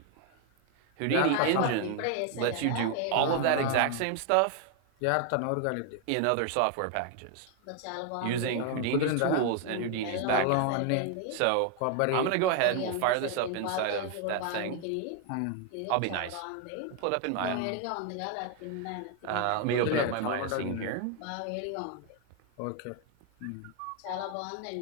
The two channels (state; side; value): different; both; correlation 0.01